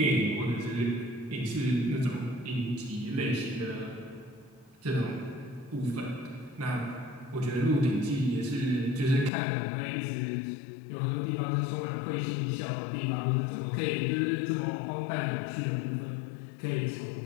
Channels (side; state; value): right; drops out; at 9.3 s